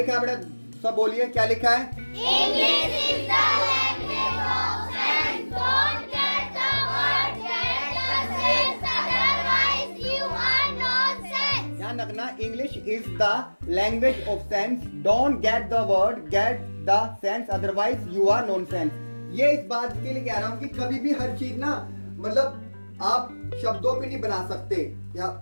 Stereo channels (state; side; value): inverted; both; correlation -1.00